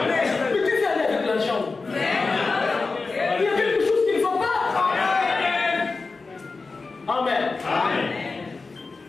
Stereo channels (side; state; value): right; quieter; 4.0 dB